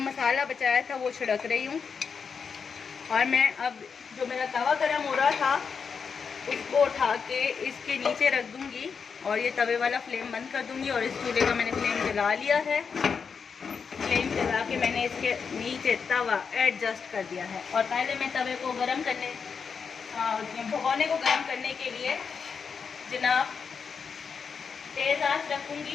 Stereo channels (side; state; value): right; quieter; 5.9 dB